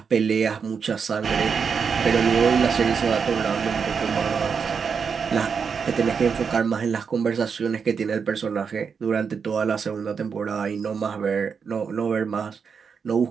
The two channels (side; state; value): left; quieter; 6.1 dB